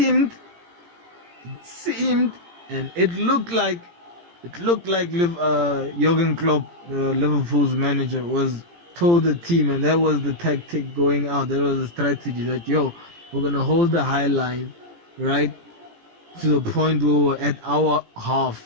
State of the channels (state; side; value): late; left; 17 ms